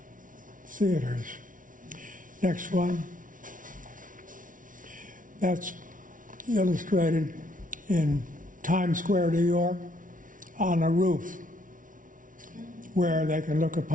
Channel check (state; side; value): late; left; 0.38 ms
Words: theaters. Next one. That's illustrated in Times Square, New York, on a roof where they can look